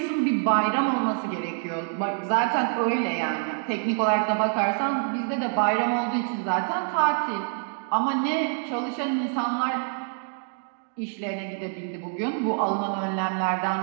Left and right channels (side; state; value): left; silent; 59 dB below the other